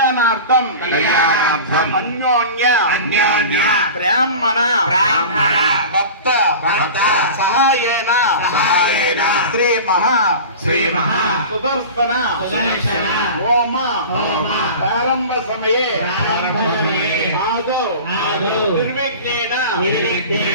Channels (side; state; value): both; inverted; correlation -0.35